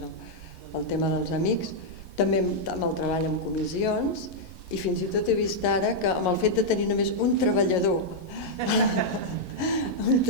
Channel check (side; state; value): right; late; 11 ms